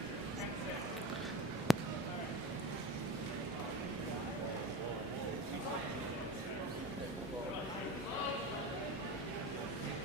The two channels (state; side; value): normal; both; correlation 0.29